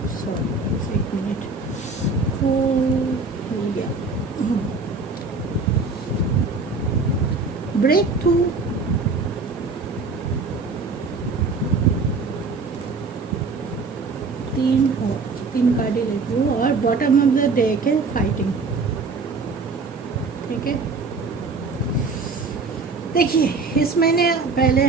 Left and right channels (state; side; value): quieter; left; 4.1 dB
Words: सॉरी एक मिनट, ब्रेक थ्रू, तीन कार्ड ही लेती हूँ, और बॉटम ऑफ द डेक है फाइटिंग। ठीक है, देखिए इस महीने पहले